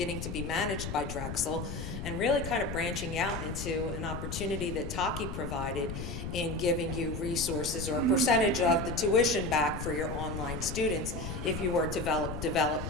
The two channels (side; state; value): left; noise; rumble, 6 dB below the sound